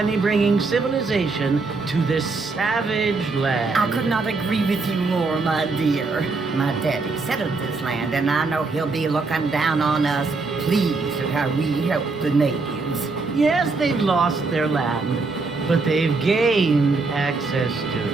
bringing civilization to this savage land. I could not agree with you more, my dear. My daddy settled this land, and I know he'll be looking down on us, pleased at how we help the natives. Yes, they've lost their land, but they've gained access to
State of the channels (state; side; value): quieter; left; 3.9 dB